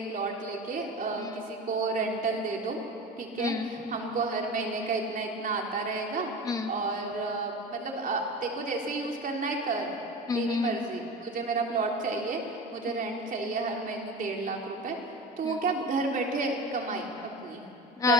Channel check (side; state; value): both; normal; correlation 0.30